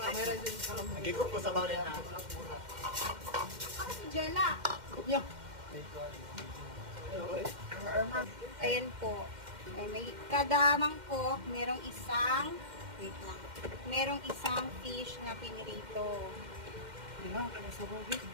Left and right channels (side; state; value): left; late; 2.1 ms